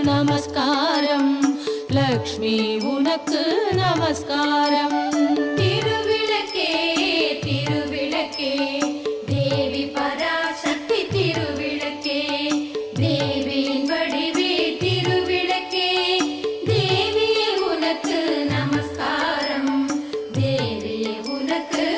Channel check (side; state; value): both; identical; correlation 1.00